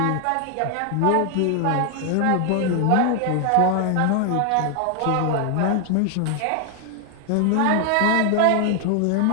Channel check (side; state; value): both; different; correlation 0.01